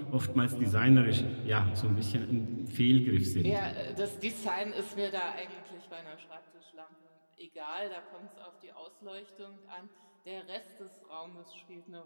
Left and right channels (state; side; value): inverted; both; correlation -1.00